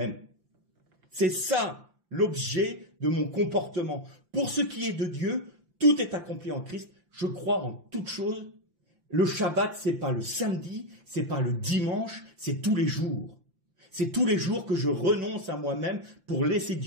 C'est ça l'objet de mon comportement. Pour ce qui est de Dieu, tout est accompli en Christ. Je crois en toute chose. Le Shabbat, c'est pas le samedi, c'est pas le dimanche, c'est tous les jours. C'est tous les jours que je renonce à moi-même pour laisser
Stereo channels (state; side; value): late; left; 5.8 ms